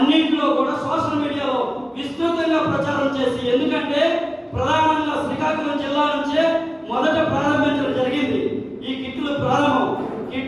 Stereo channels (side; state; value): both; identical; correlation 1.00